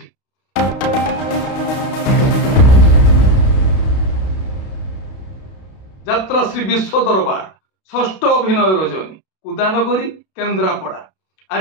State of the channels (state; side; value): late; right; 32 ms